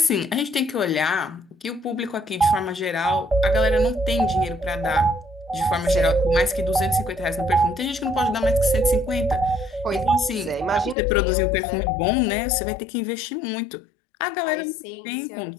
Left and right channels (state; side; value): drops out; right; at 11.0 s